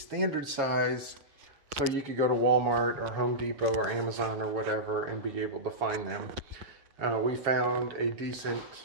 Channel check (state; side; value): late; left; 7.3 ms